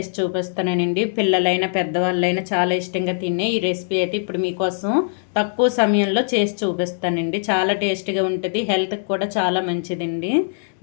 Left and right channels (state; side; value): silent; right; digital silence